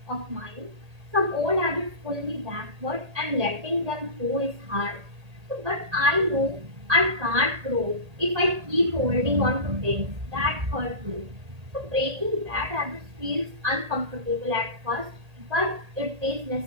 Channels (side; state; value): left; late; 1.8 ms